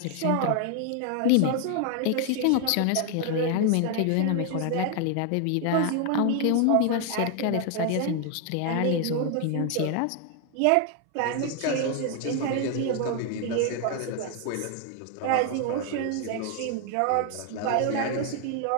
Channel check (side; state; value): both; different; correlation 0.00